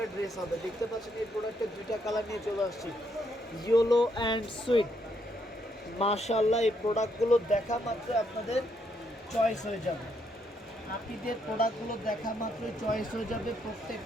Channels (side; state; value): both; normal; correlation 0.75